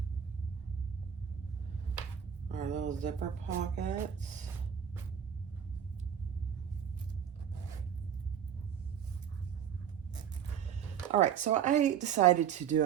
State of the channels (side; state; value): left; quieter; 8.5 dB